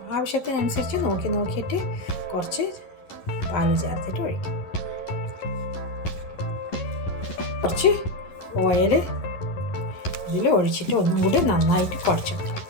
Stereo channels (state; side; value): late; right; 11 ms